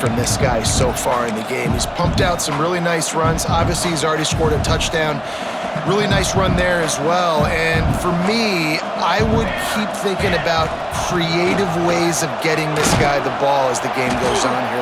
this guy so far in the game. He's pumped out some really nice runs. Obviously, he's already scored a touchdown. Really nice run there as well. And for me, I would keep thinking about creative ways of getting this guy the ball as the game goes on here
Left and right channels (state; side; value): identical; both; correlation 1.00